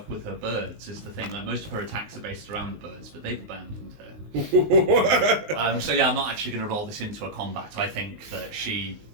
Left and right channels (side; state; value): left; late; 19 ms